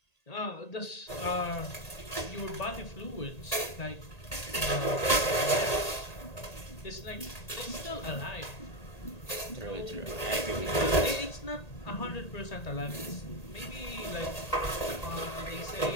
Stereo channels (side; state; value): right; late; 1.8 ms